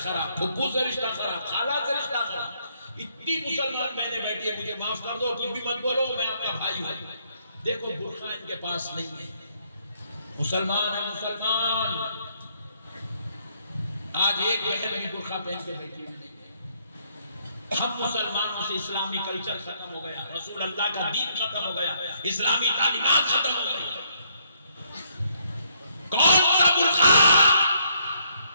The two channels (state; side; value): inverted; both; correlation -0.71